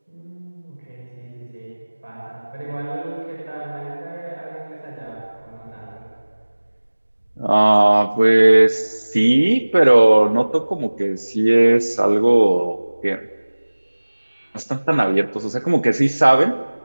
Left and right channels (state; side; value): inverted; both; correlation -1.00